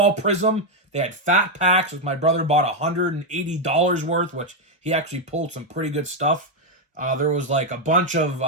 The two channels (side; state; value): both; normal; correlation 0.03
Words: Prism. They had fat packs, which my brother bought $180 worth, which he actually pulled some pretty good stuff. There was a bunch of